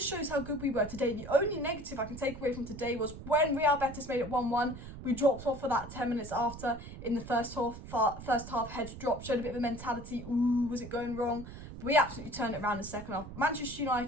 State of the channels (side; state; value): right; noise; rumble, 12 dB below the sound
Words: shows how good we were today. The only negative I can take away from today was when Real Betis made it 1-1, we dropped off for that 10 minutes after in the first half, heads dropped, showed a bit of a mentality, ooh, was it going wrong? But we absolutely turned it around in the second half. Manchester